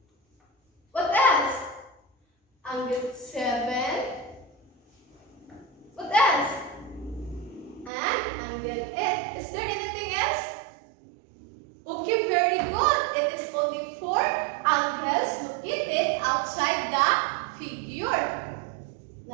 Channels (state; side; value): drops out; left; at 7.9 s